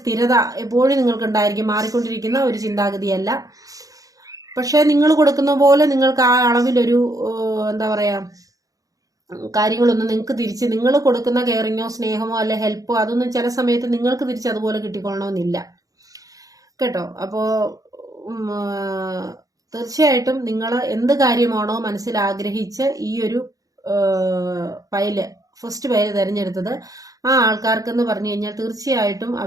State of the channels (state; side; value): late; left; 0.17 ms